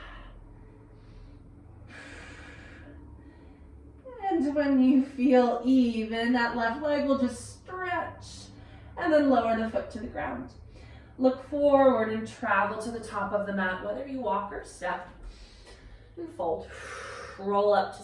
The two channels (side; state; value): both; identical; correlation 1.00